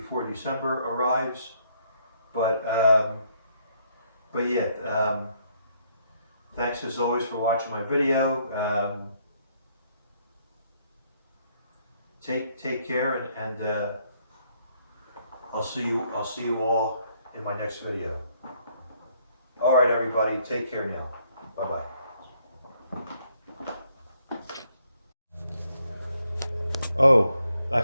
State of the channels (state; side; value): inverted; both; correlation -0.70